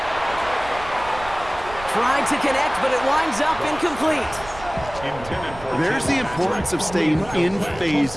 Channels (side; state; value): right; noise; rumble, 16 dB below the sound